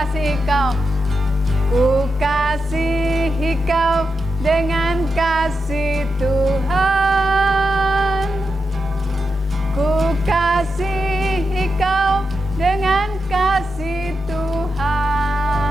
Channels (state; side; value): normal; both; correlation 0.86